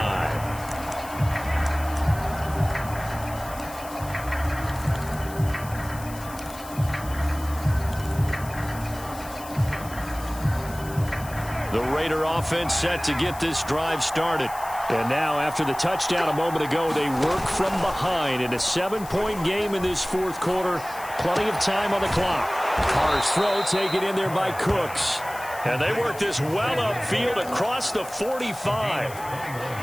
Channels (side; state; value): left; noise; hiss, 16 dB below the sound